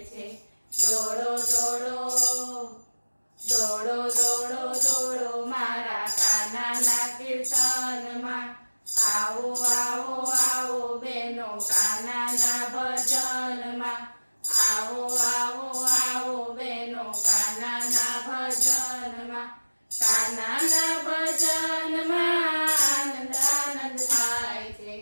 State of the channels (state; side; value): inverted; both; correlation -1.00